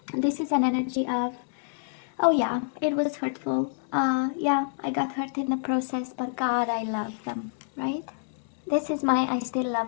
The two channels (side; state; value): right; silent; 60 dB below the other